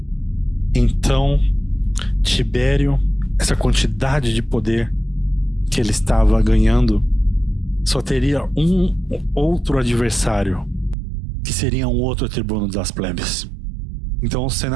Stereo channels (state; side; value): drops out; left; at 11.0 s